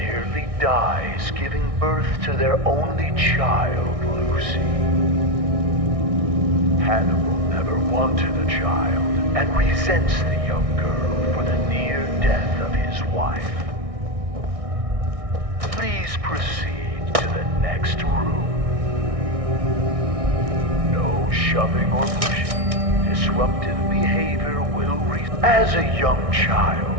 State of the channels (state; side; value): late; left; 1.6 ms